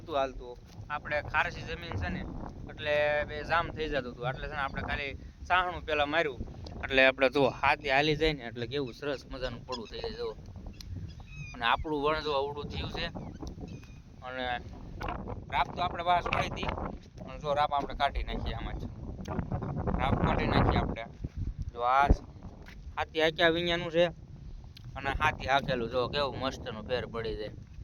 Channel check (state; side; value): identical; both; correlation 1.00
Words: હાલતું. આપણે ખારસી જમીન છે ને, એટલે બે જામ થઈ જતું હતું. એટલે છે ને આપણે ખાલી સાહણું પહેલાં માર્યું, એટલે આપણે જો હાથી હાલી જાય ને એટલે કેવું સરસ મજાનું પડું થઈ જાય. જો અને આપણું વણ જો અવડું થયું છે. અને રાપ તો આપણે બહાર છોડી હતી, અને જો રાપ આપણે કાઢી નાખીએ. આમાં જ રાપ કાઢી નાખીએ આપણે. જો આ હાથી હાંક્યા વિኛનું છે, અને હાથી હાકેલું જો કેવું મસ્તનું ફેર પડી જાય.